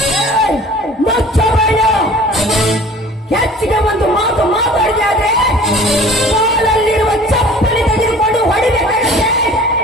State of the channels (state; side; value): normal; both; correlation 0.47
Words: ಮುಚ್ಚಬೇಡ. ಹೆಚ್ಚಿಗೆ ಒಂದು ಮಾತು ಮಾತಾಡಿದೆ ಆದ್ರೆ ಕಾಲಲ್ಲಿರುವ ಚಪ್ಪಲಿ ತೆಗೆದುಕೊಂಡು ಹೊಡಿಬೇಕಾಗತ್ತೆ.